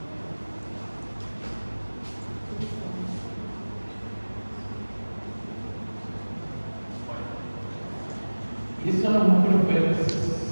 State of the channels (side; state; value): both; inverted; correlation -1.00